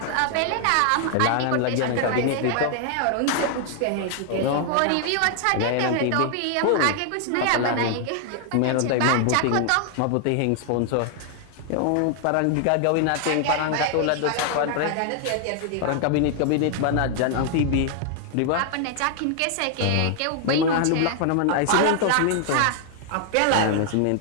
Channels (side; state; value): both; different; correlation 0.00